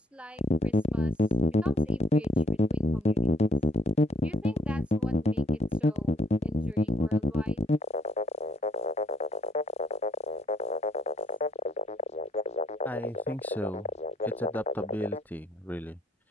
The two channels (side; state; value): both; normal; correlation 0.68